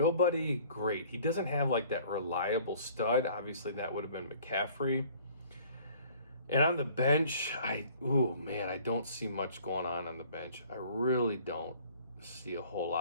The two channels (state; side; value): inverted; both; correlation -0.53